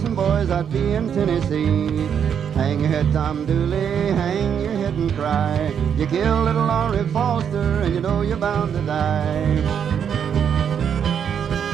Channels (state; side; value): quieter; left; 8.0 dB